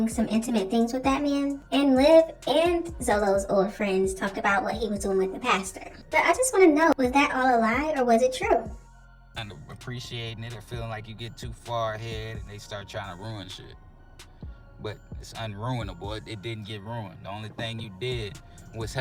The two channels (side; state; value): both; identical; correlation 1.00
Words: some intimate things with that man. And Liv and Zolo's old friends talked about what he was doing with the pastor. But I just want to know, was that all a lie or was it true? And appreciating it or feeling like you get too far ahead and they start trying to ruin shit. But it's unruinable. It didn't get ruined. The only thing you did was